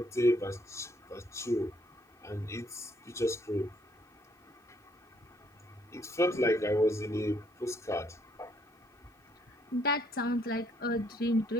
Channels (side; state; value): both; normal; correlation 0.68